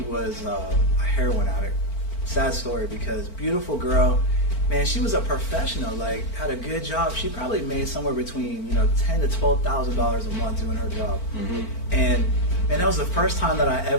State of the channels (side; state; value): right; late; 4.5 ms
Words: was a heroin addict. Sad story because beautiful girl. Man, she was a professional, like had a good job. She probably made somewhere between $10,000 to $12,000 a month doing her job. Mm-hmm. And man, that was the first time that I